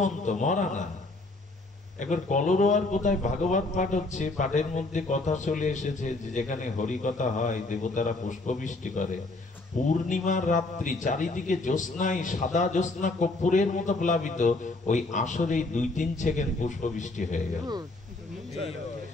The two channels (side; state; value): right; quieter; 3.1 dB